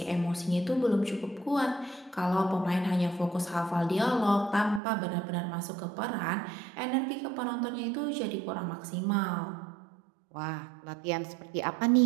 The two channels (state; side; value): drops out; left; at 4.8 s